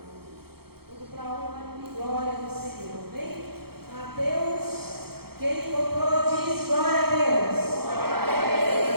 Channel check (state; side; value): late; left; 0.95 ms